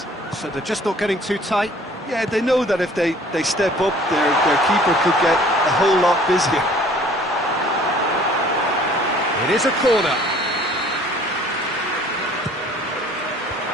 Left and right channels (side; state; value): both; normal; correlation 0.53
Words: So they're just not getting too tight. Yeah, they know that if they step up, their keeper could get a whole lot busier. It is a corner.